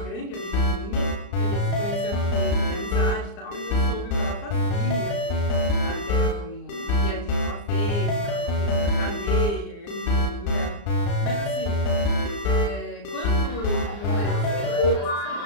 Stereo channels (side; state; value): right; late; 34 ms